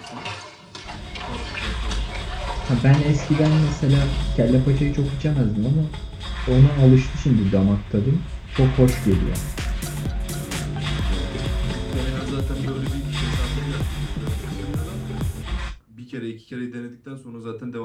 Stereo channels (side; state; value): both; identical; correlation 1.00